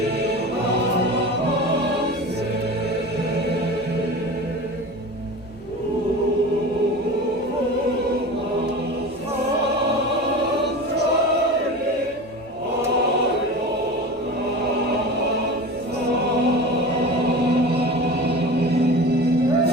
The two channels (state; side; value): normal; both; correlation 0.33